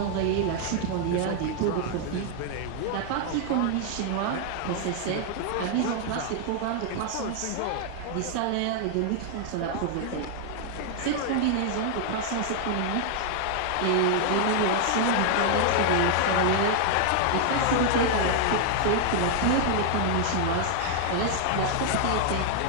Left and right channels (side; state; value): both; different; correlation 0.00